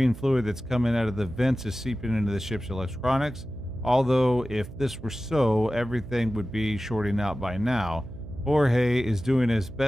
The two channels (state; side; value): noise; right; hum, 14 dB below the sound